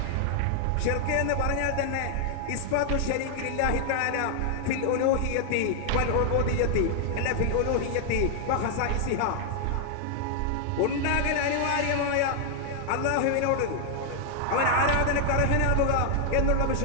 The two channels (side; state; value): both; different; correlation 0.00